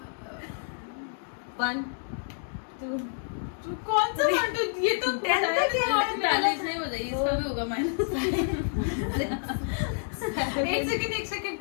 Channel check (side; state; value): right; silent; digital silence